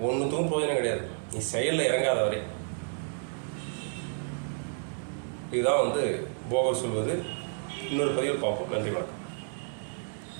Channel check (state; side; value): silent; left; digital silence